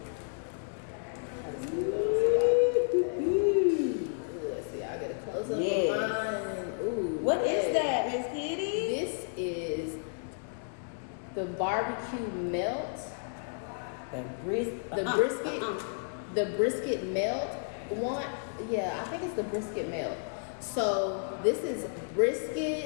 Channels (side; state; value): right; silent; digital silence